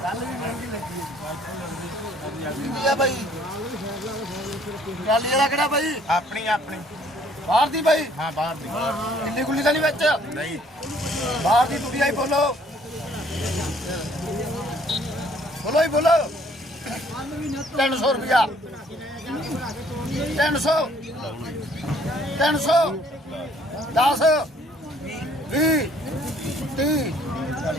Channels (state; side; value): normal; both; correlation 0.61